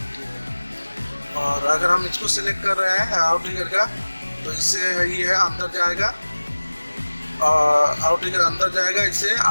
ठीक है। और अगर हम इसको सिलेक्ट कर रहे हैं आउट ट्रिगर का, तो इससे ये है अंदर जाएगा, और आउट ट्रिगर अंदर जाएगा, इससे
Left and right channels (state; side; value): inverted; both; correlation -1.00